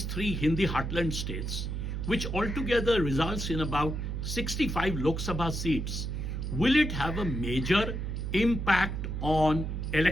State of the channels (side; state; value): right; noise; hum, 3 dB below the sound